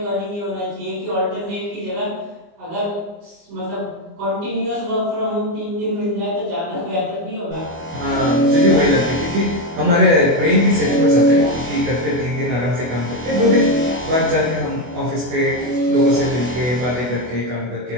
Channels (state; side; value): late; left; 24 ms